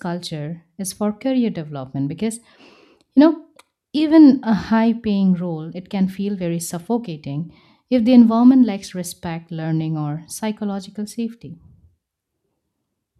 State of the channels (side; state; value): both; identical; correlation 1.00